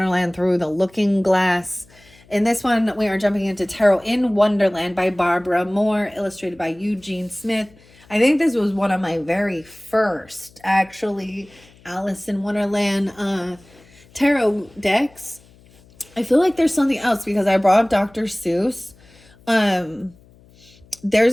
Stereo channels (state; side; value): noise; left; hum, 27 dB below the sound